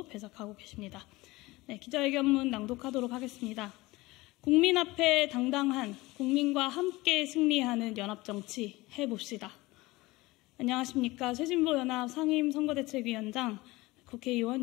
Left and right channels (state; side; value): quieter; right; 20.7 dB